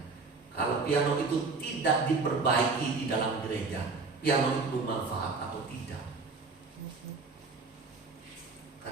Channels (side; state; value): left; quieter; 4.1 dB